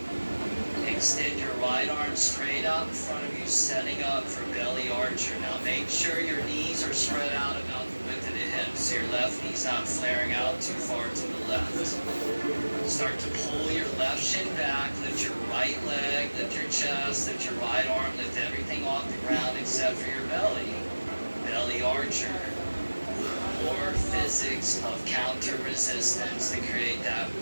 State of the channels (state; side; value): inverted; both; correlation -1.00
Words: Extend your right arm straight out in front of you, setting up for belly archer. Now make sure your knees are spread out about the width of the hips, so your left knee's not flaring out too far to the left. Start to pull your left shin back, lift your right leg, lift your chest, lift your right arm, lift everything off the ground except for your belly. Belly archer. More physics of counter resistance to create that